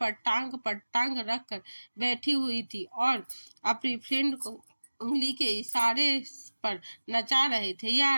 टांग रखकर बैठी हुई थी और अपनी फ्रेंड को उंगली के इशारे पर नचा रहे थे।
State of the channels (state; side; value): inverted; both; correlation -1.00